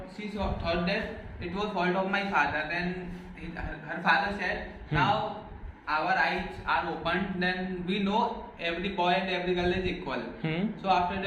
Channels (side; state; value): both; identical; correlation 1.00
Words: that it was fault of my father. Then her father said, now our eyes are opened, then we know every boy and every girl is equal. So after